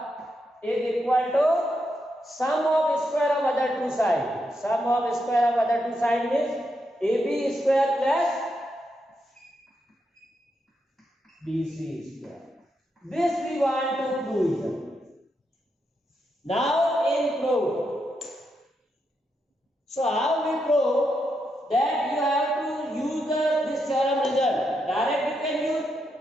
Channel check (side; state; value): both; normal; correlation 0.82